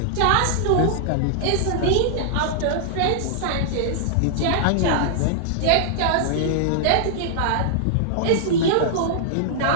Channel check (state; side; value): different; both; correlation -0.01